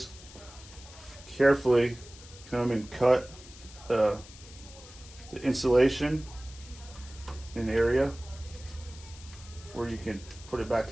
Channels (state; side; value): noise; left; hiss, 19 dB below the sound